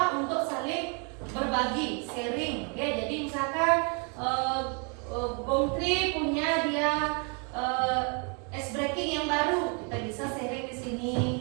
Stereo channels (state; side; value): quieter; left; 36.7 dB